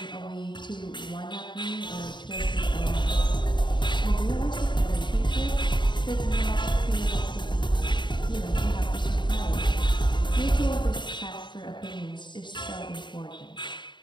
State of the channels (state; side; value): late; right; 0.22 ms